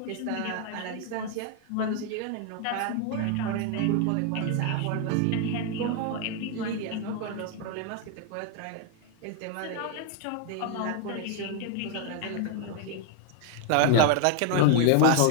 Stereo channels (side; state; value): both; different; correlation 0.01